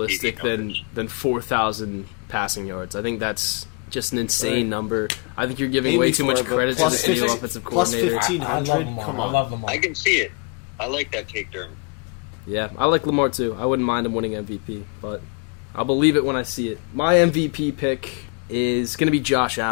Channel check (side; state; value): right; quieter; 32.4 dB